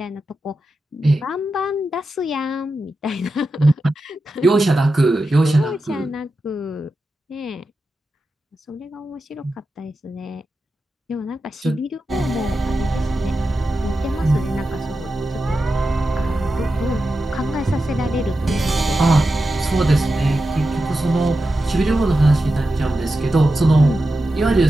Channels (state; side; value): normal; both; correlation 0.91